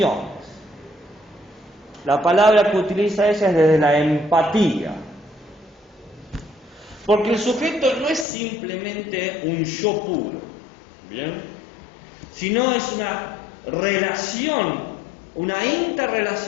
La palabra que utiliza ella es desde la empatía. Porque el sujeto no es simplemente un yo puro, ¿bien? Sino es una relación, una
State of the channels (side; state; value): right; drops out; at 8.2 s